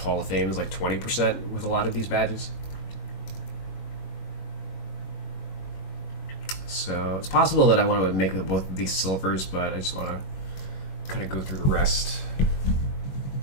of Fame is like 20% with a lot of these badges. So it's possible that I want to make both of these silvers, but I just want to kind of go through the rest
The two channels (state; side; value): late; right; 21 ms